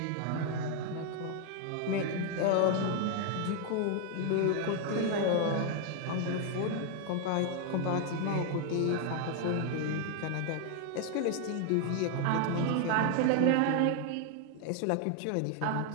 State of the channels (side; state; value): both; different; correlation 0.00